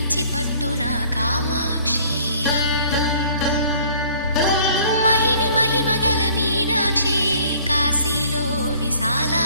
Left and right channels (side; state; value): both; inverted; correlation -0.55